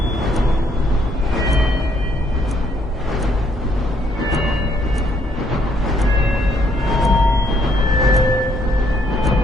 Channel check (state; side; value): normal; both; correlation 0.69